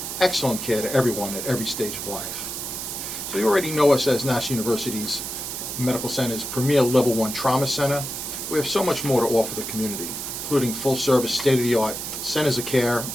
excellent care to everyone at every stage of life. So you already know us as Nassau University's Medical Center's premier Level 1 Trauma Center. We have so much more to offer the community, including full-service, state-of-the-art centers of care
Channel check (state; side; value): noise; right; hiss, 6 dB below the sound